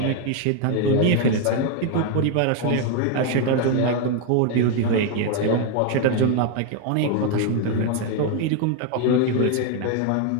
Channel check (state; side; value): different; both; correlation 0.01